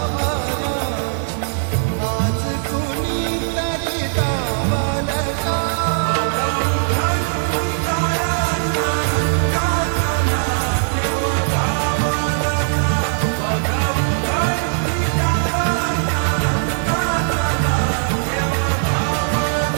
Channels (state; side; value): silent; left; digital silence